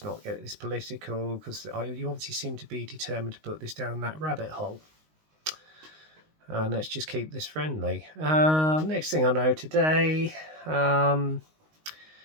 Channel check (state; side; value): late; left; 19 ms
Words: not get this political, because you obviously seem to be determined to put this down that rabbit hole. And let's just keep this friendly. Next thing I know today, I've